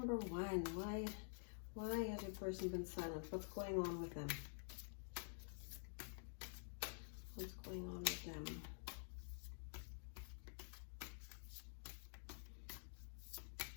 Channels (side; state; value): right; silent; digital silence